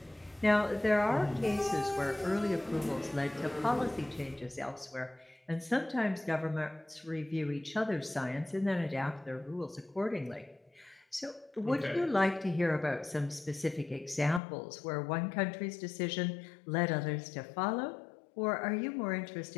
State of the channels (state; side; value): drops out; right; at 14.4 s